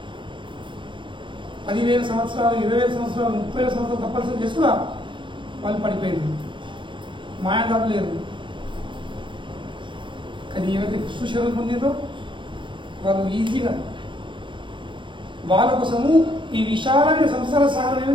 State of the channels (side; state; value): left; late; 0.24 ms